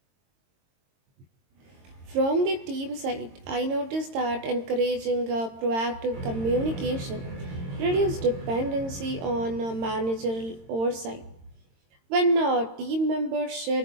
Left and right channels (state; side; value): late; left; 22 ms